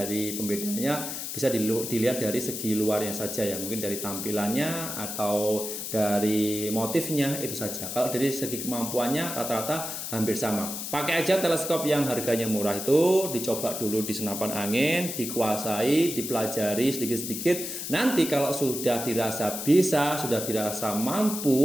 pembedanya bisa dilihat dari segi luarnya saja ya, mungkin dari tampilannya atau dari motifnya, itu saja. Kalau dari segi kemampuannya rata-rata hampir sama. Pakai aja teleskop yang harganya murah itu, dicoba dulu di senapan angin, dikuasai, dipelajari sedikit-sedikit. Nanti kalau sudah dirasa bisa, sudah dirasa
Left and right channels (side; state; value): left; noise; hiss, 6 dB below the sound